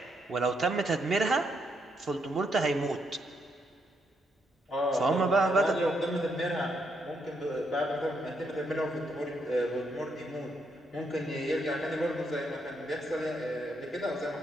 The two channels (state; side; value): normal; both; correlation 0.77